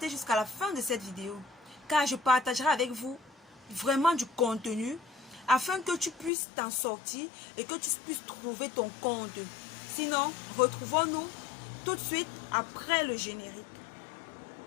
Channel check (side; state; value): right; drops out; at 6.3 s